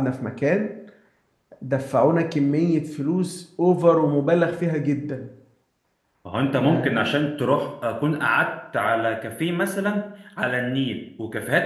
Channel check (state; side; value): identical; both; correlation 1.00